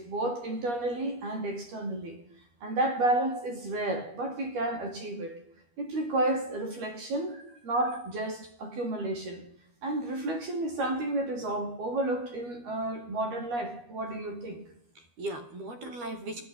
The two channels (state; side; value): late; left; 12 ms